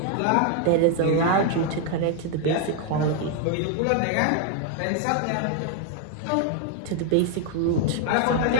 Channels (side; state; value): both; different; correlation 0.01